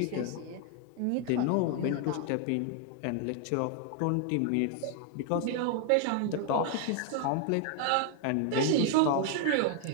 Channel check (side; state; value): both; different; correlation 0.00